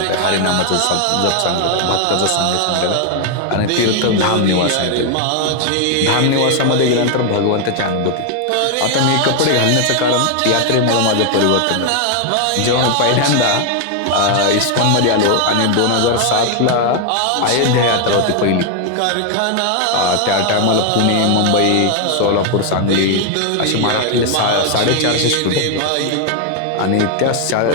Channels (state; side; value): different; both; correlation 0.00